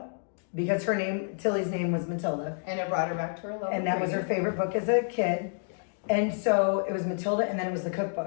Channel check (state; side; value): silent; right; digital silence